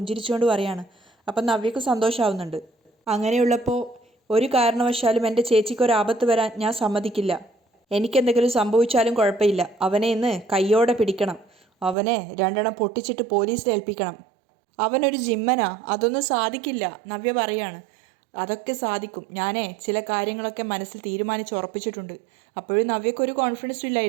പറയാണ്. അപ്പം നവ്യക്ക് സന്തോഷമാവുന്നുണ്ട്. അങ്ങനെയുള്ളപ്പോൾ ഒരു കാരണവശാലും എൻ്റെ ചേച്ചിക്കൊരാപത്ത് വരാൻ ഞാൻ സമ്മതിക്കില്ല. എനിക്കെന്തെങ്കിലും സംഭവിച്ചാലും കുഴപ്പമില്ല. അവനെ ഇന്ന് കയ്യോടെ പിടിക്കണം. അവനെ രണ്ടെണ്ണം പൊട്ടിച്ചിട്ട് പോലീസിൽ ഏൽപ്പിക്കണം. അവനൊരു ജിമ്മനാ, അതൊന്നും സാധിക്കില്ല. നവ്യ പറയാണ്. അതൊക്കെ സാധിക്കും. ഞാനേ ചില കാര്യങ്ങളൊക്കെ മനസ്സിൽ തീരുമാനിച്ച് ഉറപ്പിച്ചിട്ടുണ്ട്. അപ്പോഴും നവ്യക്കൊരു കോൺഫിഡൻസും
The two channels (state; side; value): drops out; left; at 12.0 s